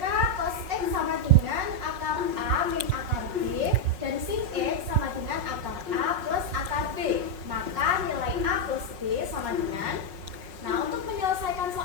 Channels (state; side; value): late; left; 5.5 ms